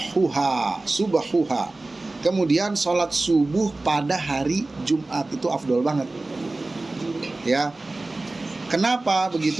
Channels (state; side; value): quieter; left; 3.0 dB